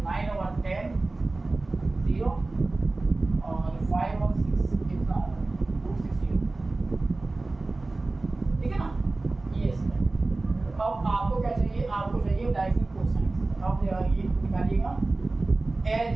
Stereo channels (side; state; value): left; quieter; 3.2 dB